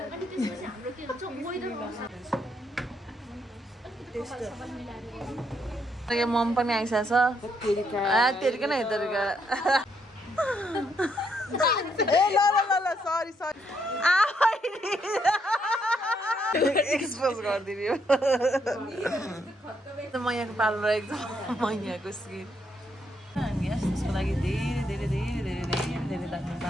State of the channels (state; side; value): normal; both; correlation 0.75